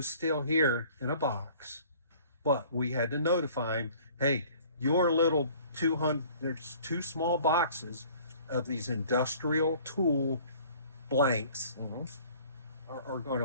still here in a box, but we had to notify him, hey, your little 200, there's 2 small boxes of these industrial tool blanks are going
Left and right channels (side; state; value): both; inverted; correlation -0.52